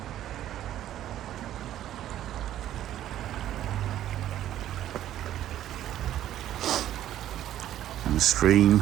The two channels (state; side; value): quieter; left; 12.2 dB